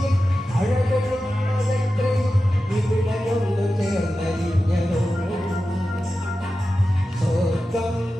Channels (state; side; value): normal; both; correlation 0.93